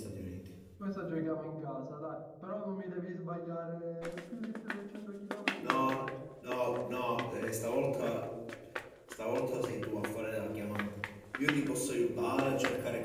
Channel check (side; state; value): both; identical; correlation 1.00